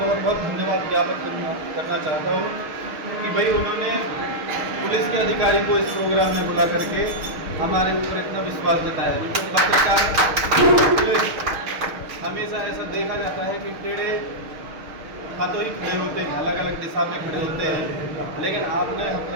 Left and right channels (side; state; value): left; late; 6.5 ms